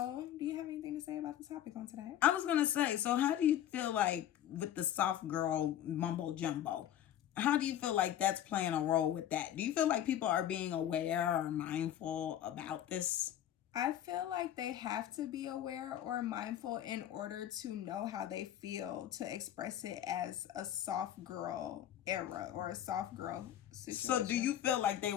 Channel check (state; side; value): quieter; right; 11.2 dB